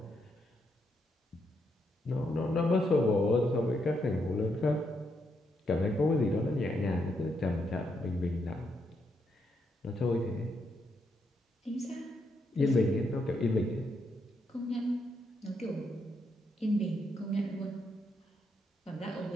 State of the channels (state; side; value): normal; both; correlation 0.79